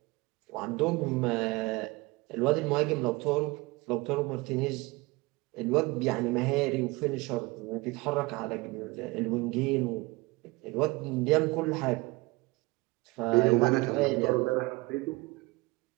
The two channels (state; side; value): quieter; left; 23.5 dB